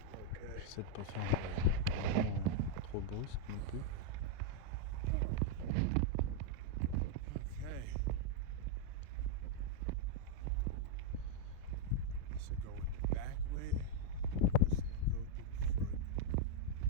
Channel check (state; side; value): different; both; correlation -0.01